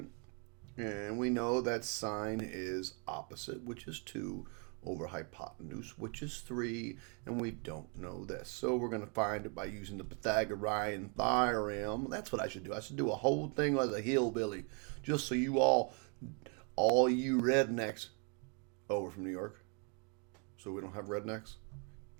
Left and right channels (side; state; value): left; quieter; 37.3 dB